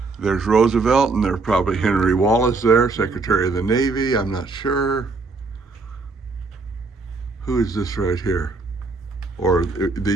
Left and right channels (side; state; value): left; quieter; 3.8 dB